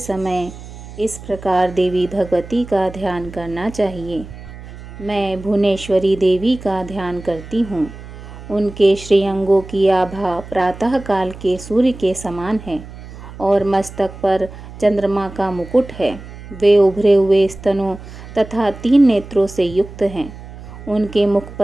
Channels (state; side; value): noise; right; hum, 15 dB below the sound